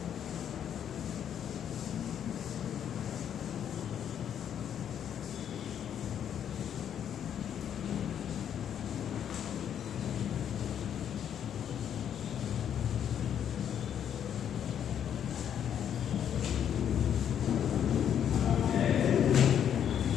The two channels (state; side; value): quieter; right; 9.2 dB